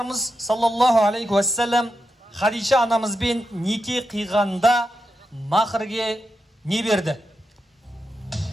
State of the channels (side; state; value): both; normal; correlation 0.87